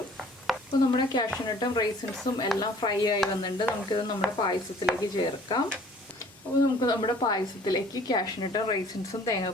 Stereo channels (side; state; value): both; normal; correlation 0.53